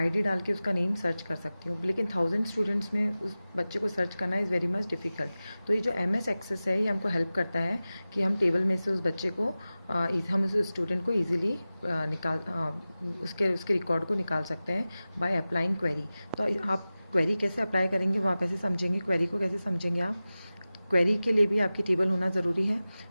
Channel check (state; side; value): inverted; both; correlation -0.96